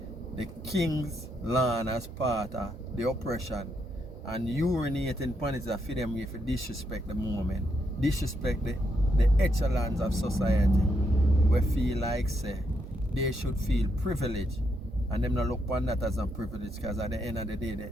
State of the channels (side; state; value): both; normal; correlation 0.79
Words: the king's land as part of the oppression and urinating upon it for them if you disrespect the moment, disrespect the echelons of society, we feel like say they should feel privileged, and them not look upon that as a privilege, because at the end of the day